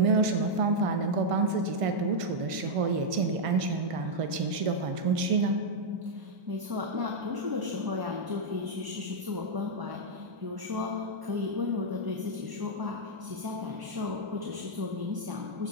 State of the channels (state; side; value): late; left; 1.5 ms